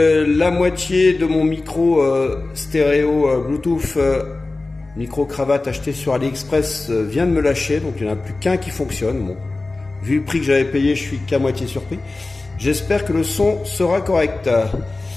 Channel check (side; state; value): right; quieter; 3.3 dB